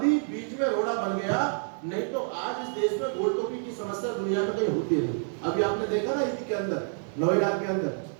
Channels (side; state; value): left; silent; 59 dB below the other